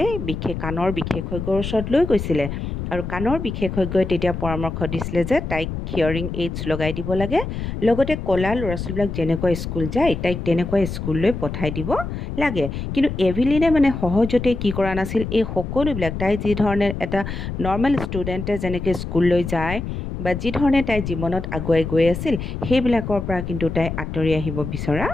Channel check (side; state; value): left; noise; rumble, 6 dB below the sound